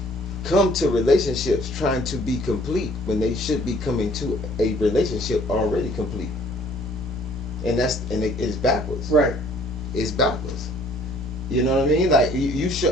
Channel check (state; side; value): normal; both; correlation 0.57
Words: come to relationships trying to be complete when they should be coming to a relationship already complete, and it's backwards. Right. It's backwards. You know what I mean? Like you